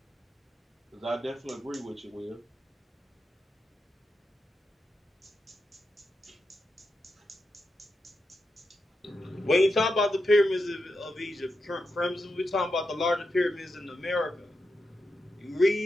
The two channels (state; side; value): normal; both; correlation 0.87